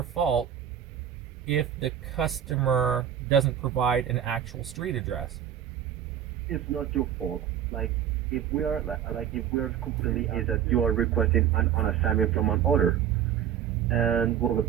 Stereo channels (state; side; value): quieter; left; 9.7 dB